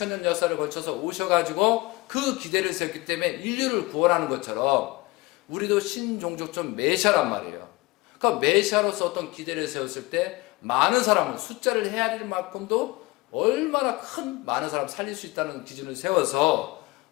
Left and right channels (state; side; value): quieter; right; 22.5 dB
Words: 역사를 거쳐서 오셔가지고 그 기대를 세웠기 때문에 인류를 구원하는 것처럼 우리도 신종족적 메시아란 말이에요. 그러니까 메시아로서 어떤 기대를 세웠을 때 많은 사람, 숫자를 헤아릴 만큼도 얼마나 큰 많은 사람 살릴 수 있다는 기준을 세워서